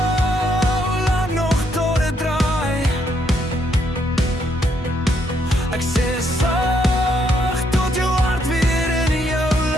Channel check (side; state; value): both; normal; correlation 0.73